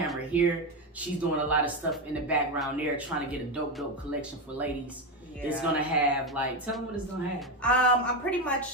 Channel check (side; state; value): both; normal; correlation 0.12